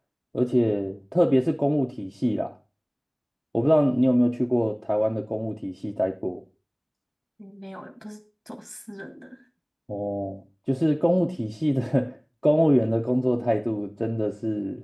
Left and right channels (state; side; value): identical; both; correlation 1.00